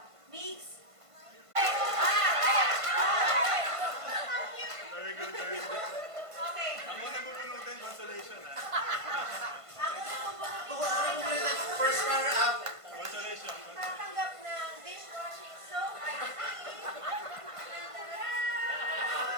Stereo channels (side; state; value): left; late; 1.5 ms